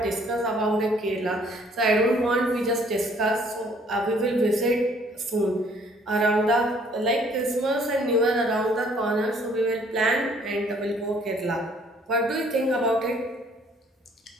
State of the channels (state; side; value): normal; both; correlation 0.60